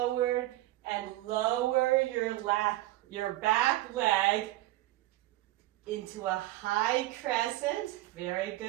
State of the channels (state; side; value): quieter; left; 17.1 dB